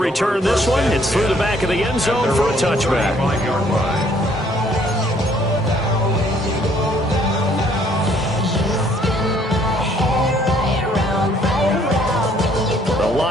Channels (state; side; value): normal; both; correlation 0.63